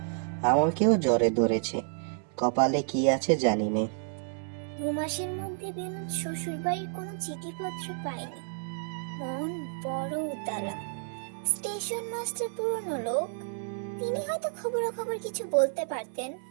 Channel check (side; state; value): left; silent; 58 dB below the other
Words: আমাকেও জ্বরে ধরেছে, কপালে কি আছে জানি নে। 2 মাসের মধ্যে বিনোদ শ্বশুর বাড়ির কোনো চিঠিপত্র পায়নি। মন বড় উতালা। স্টেশন মাস্টার পুরনো লোক, তিনি হয়তো খবরাখবর কিছু বলতে পারতেন।